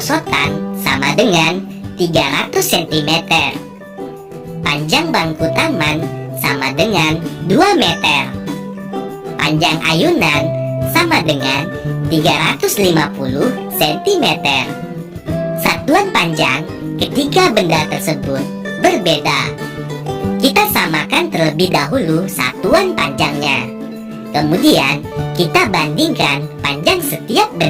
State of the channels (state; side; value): identical; both; correlation 1.00